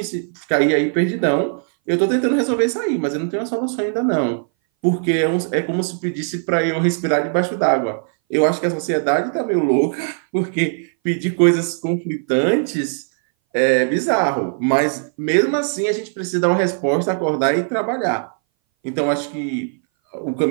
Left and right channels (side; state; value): left; silent; 60 dB below the other